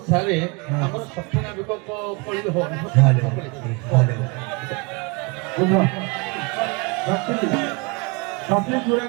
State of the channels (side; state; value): left; quieter; 29.4 dB